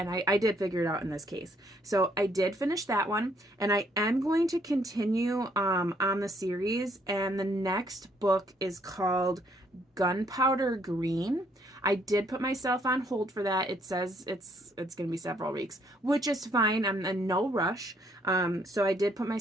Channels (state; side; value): normal; both; correlation 0.68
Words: I did figure it out in this case. So I did finish that one, and I am going to continue on the series, and the next book is called Gunpowder Green. I did put myself on hold for that. It says it's going to be several weeks, which is fine. I'm in no rush. So I did put